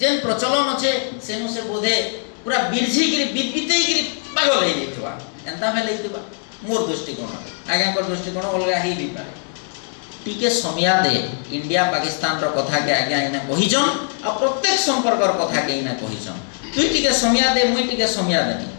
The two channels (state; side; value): silent; right; 59 dB below the other